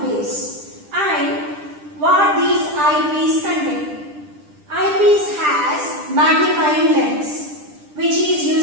base. And what these eyepiece contain? Eyepiece has magnifying lens, which is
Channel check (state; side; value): late; left; 10 ms